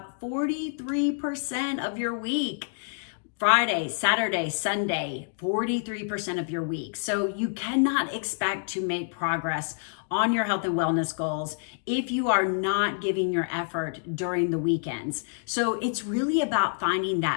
43% of your week. Friday, Saturday, Sunday, 43% of your week. So you cannot expect to make progress on your health and wellness goals if you are not giving your effort during the weekends. So it's really about finding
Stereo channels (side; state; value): right; silent; digital silence